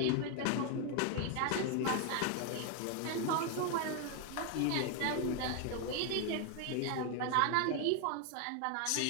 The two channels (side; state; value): both; different; correlation 0.01